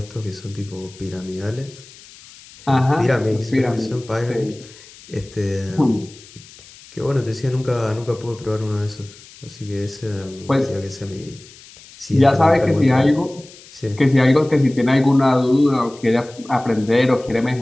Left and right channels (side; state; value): left; noise; hiss, 21 dB below the sound